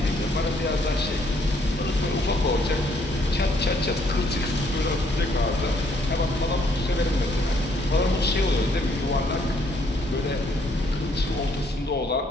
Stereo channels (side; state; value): both; normal; correlation 0.68